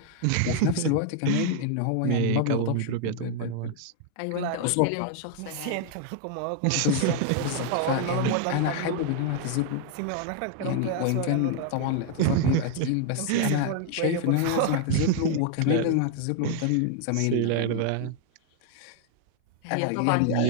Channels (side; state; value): both; different; correlation 0.00